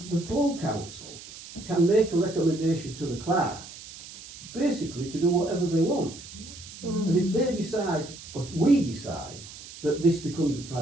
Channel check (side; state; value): right; noise; hiss, 15 dB below the sound